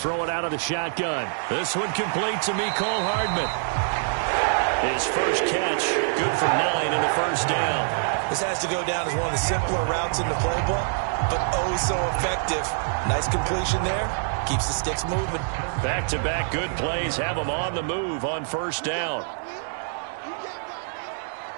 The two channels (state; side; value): silent; left; digital silence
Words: it out of the shotgun. This one complete to Mecole Hardman. His first catch, good for 9 and a first down. This has to go down as one of the simpler routes in the playbook, but oh so effective. Nice completion there. Keeps the sticks moving. Back-to-back good plays have them on the move on first down.